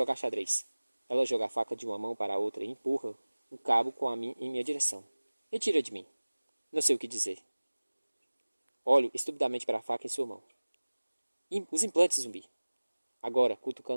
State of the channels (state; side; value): inverted; both; correlation -1.00